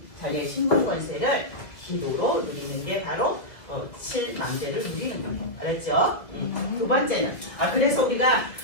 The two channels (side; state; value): right; late; 2.2 ms